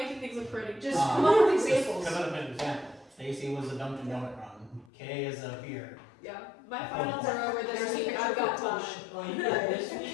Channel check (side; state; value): right; drops out; at 4.9 s